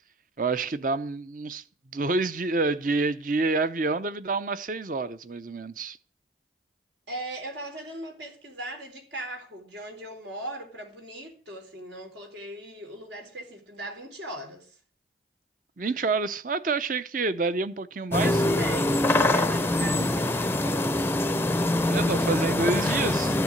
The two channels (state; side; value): normal; both; correlation 0.54